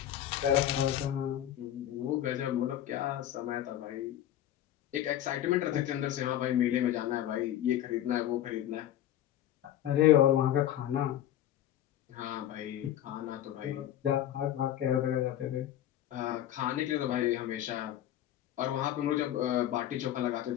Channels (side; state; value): right; quieter; 11.9 dB